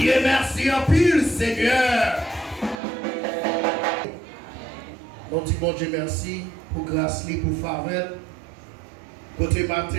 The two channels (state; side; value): drops out; left; at 2.8 s